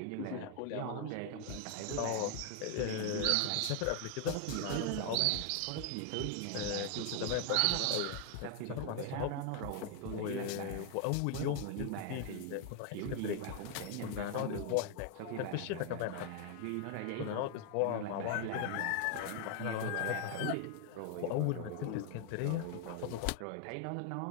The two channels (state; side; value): different; both; correlation 0.00